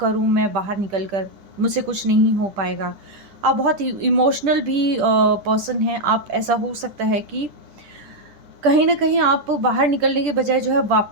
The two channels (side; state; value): left; late; 10 ms